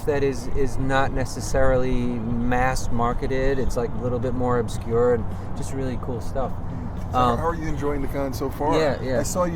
that is not necessarily mass marketed. It's like a little bit more obscure and just really cool stuff. So how are you enjoying the con so far? Yeah. I saw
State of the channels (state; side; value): identical; both; correlation 1.00